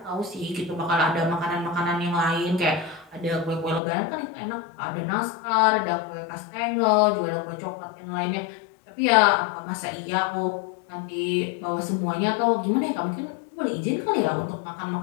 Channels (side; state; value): right; drops out; at 3.8 s